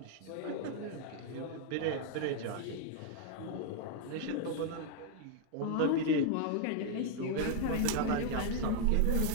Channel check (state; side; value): different; both; correlation 0.00